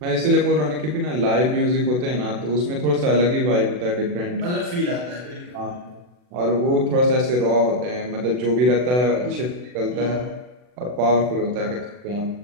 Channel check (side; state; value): left; late; 40 ms